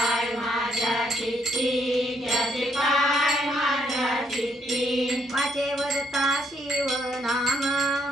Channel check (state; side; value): normal; both; correlation 0.72